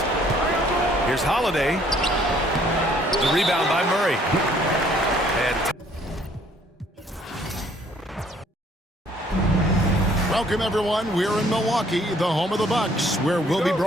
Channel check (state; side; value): normal; both; correlation 0.61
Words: Here's Holiday. The rebound by Murray. And welcome, everyone. We're in Milwaukee, the home of the Bucks, where we'll be